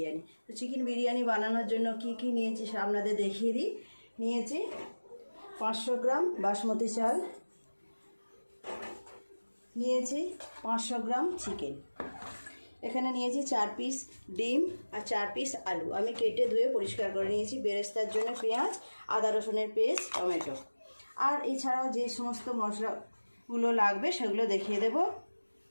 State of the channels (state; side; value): inverted; both; correlation -1.00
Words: তো চিকেন বিরিয়ানি বানানোর জন্য কি কি নিয়েছি আপনাদের দেখিয়ে দিই। নিয়েছি 500 গ্রাম বাসমতি চাল, নিয়েছি 500 গ্রাম চিকেন, এখানে নিয়েছি 4 পিস ডিম আর 4 পিস আলু আমি কেটে ধুয়ে পরিষ্কার করে নিয়েছি। বেরেস্তার জন্য পেঁয়াজ, আদা রসুনের পেস্ট, টমেটো। আর এছাড়াও যে সমস্ত মশলাগুলো লাগবে সেগুলো দেখিয়ে দেব।